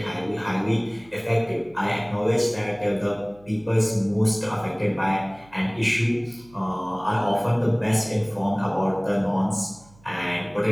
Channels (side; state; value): right; noise; hum, 27 dB below the sound